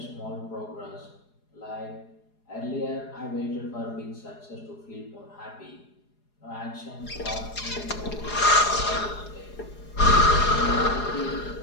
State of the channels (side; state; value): right; late; 4.8 ms